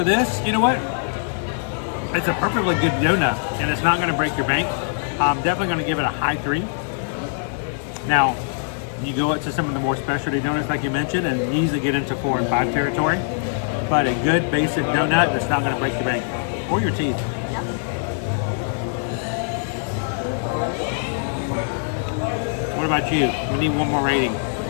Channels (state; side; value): silent; right; 64 dB below the other